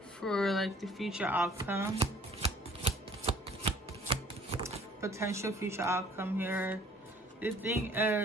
for like the future outcome, potential future outcome here. The thing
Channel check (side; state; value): both; normal; correlation 0.55